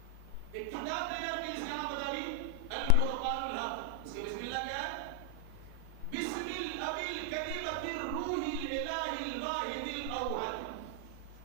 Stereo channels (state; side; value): different; both; correlation 0.00